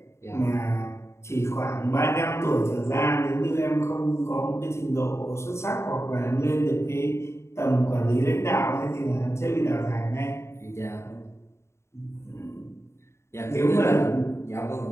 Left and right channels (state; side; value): late; right; 0.13 ms